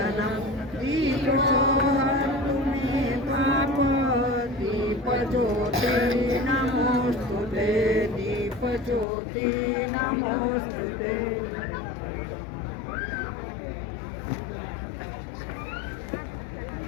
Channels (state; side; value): drops out; right; at 9.1 s